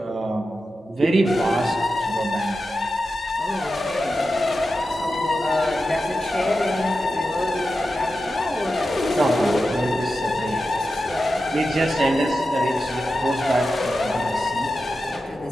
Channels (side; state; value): both; normal; correlation 0.91